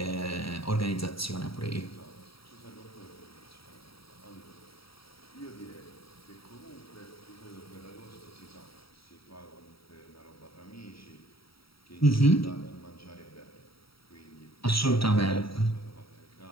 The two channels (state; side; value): late; right; 0.75 ms